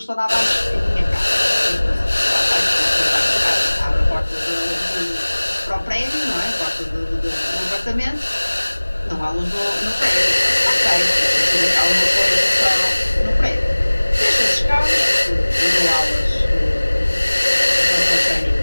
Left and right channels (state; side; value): inverted; both; correlation -1.00